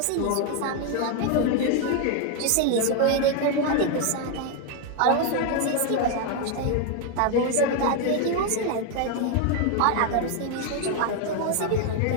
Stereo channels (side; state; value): both; different; correlation 0.01